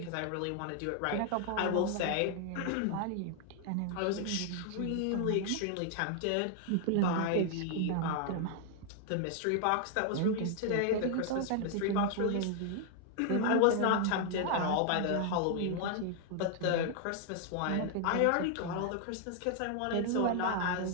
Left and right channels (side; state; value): both; different; correlation 0.00